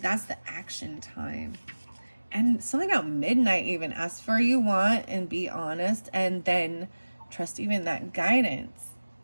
the action time. And something about midnight even. Ask for what you want and be honest. And then trust even that guidance.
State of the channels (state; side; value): inverted; both; correlation -1.00